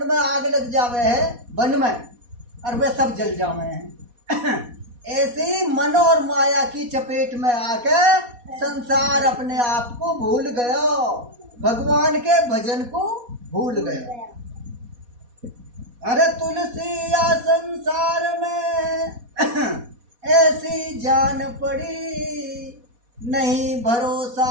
आग लग जावे है बन में, और वे सब जल जावे हैं। ऐसे ही मन और माया की चपेट में आके संसार अपने आप को भूल गया, भगवान के भजन को भूल गया। अरे तुलसी या संसार में ऐसी जान पड़ी, नहीं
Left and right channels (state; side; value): late; left; 4.1 ms